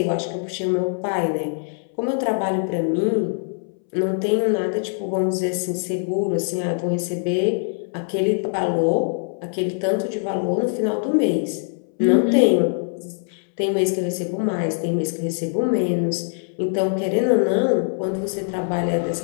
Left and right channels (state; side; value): silent; right; 64 dB below the other